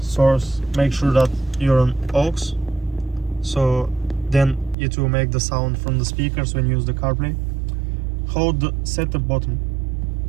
make sure that you're on aux, so then it will make the sound from the speakers when you use the CarPlay. Hold the setup button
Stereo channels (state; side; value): drops out; left; at 4.8 s